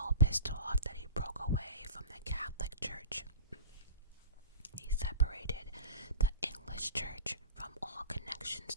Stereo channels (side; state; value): both; inverted; correlation -0.31